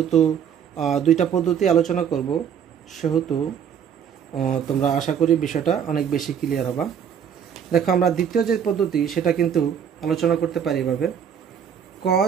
দুইটা পদ্ধতি আলোচনা করব সেহেতু তোমরা আশা করি বিষয়টা অনেক বেশি ক্লিয়ার হবে। দেখো আমরা দ্বিতীয় যে পদ্ধতি সেটা কিন্তু আলোচনা করতে পারি এভাবে,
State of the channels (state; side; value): quieter; left; 8.1 dB